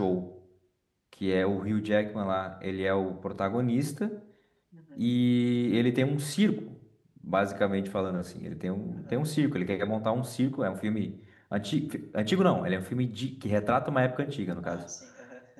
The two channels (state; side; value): identical; both; correlation 1.00